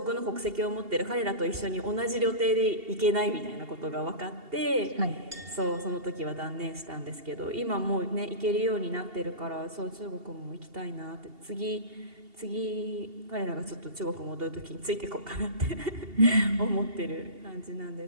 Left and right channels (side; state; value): left; late; 2.8 ms